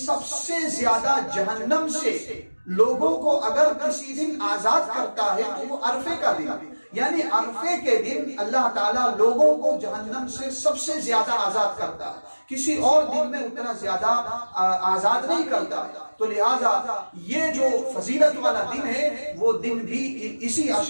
سے زیادہ جہنم سے لوگوں کو اگر کسی دن آزاد کرتا ہے تو وہ عرفے کا دن، یعنی عرفے کے دن اللہ تعالیٰ لوگوں کو جہنم سے سب سے زیادہ آزاد کرتا ہے، کسی اور دن میں اتنا زیادہ آزاد نہیں کرتا۔ تو لہٰذا یہ جو فضیلت والا دن ہے، وہ دن بھی اسی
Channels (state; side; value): inverted; both; correlation -1.00